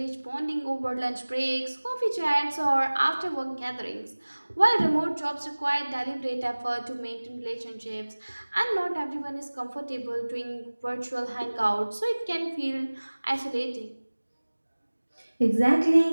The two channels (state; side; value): inverted; both; correlation -1.00